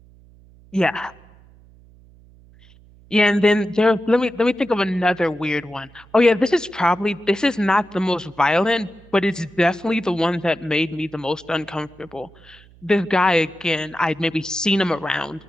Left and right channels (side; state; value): right; noise; hum, 26 dB below the sound